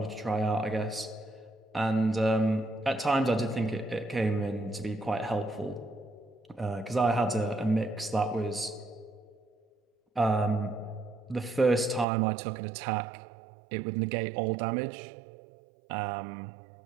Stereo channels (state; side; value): drops out; left; at 12.1 s